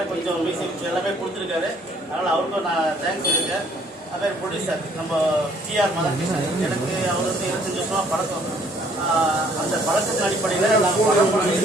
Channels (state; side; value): normal; both; correlation 0.61